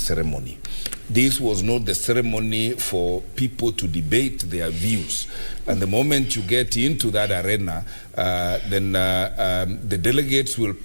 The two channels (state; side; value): inverted; both; correlation -1.00